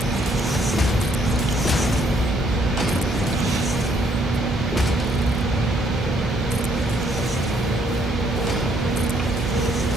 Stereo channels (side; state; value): both; normal; correlation 0.68